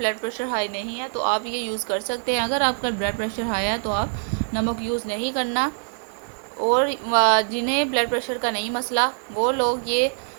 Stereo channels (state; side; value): silent; left; 56 dB below the other